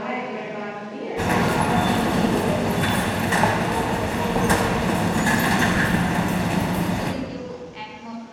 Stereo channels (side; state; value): both; identical; correlation 1.00